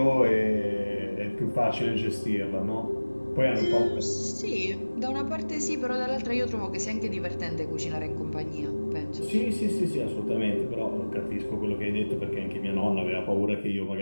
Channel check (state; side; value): inverted; both; correlation -1.00